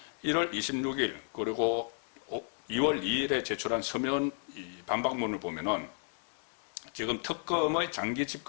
1월 26일 그리고 2월 2일에 제출한 서면 반박문을 보면은 지금 특검의 장기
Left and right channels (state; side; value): silent; right; 56 dB below the other